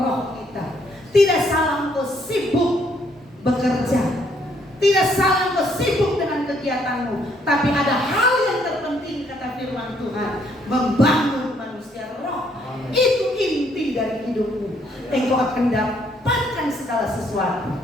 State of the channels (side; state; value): both; normal; correlation 0.68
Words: kita. Tidak salah untuk sibuk bekerja. Tidak salah engkau sibuk dengan kegiatanmu, tapi ada hal yang terpenting kata firman Tuhan, membangun manusia roh. Itu inti dari hidupmu. Engkau akan dapatkan segala sesuatu.